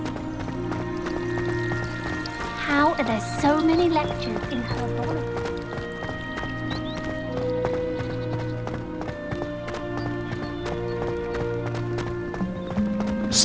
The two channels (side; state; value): both; identical; correlation 1.00